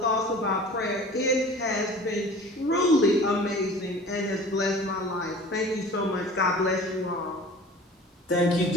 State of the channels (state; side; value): normal; both; correlation 0.43